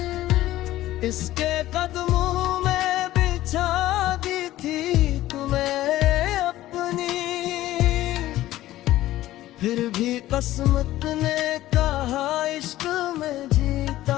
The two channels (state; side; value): quieter; right; 15.1 dB